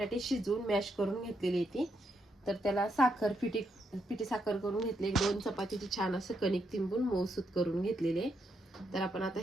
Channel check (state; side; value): normal; both; correlation 0.79